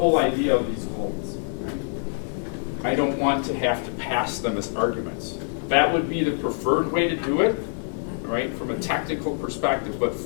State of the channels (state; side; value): silent; right; digital silence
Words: idea of these goals. Right? I don't want to have to pass them as arguments. That would be the preferred way to do it, right, from a technical perspective. But